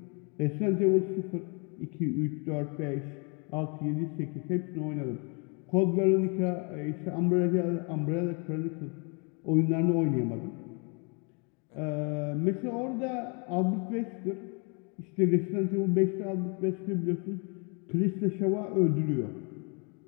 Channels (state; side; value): quieter; right; 34.7 dB